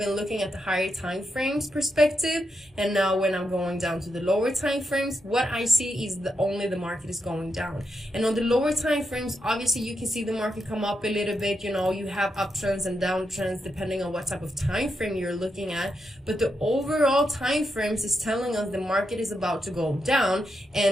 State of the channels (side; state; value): both; normal; correlation 0.84